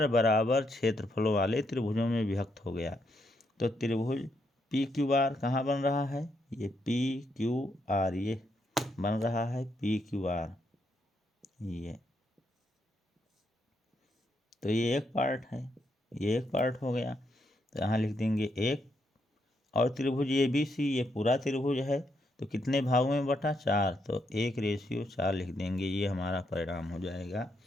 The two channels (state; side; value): normal; both; correlation 0.78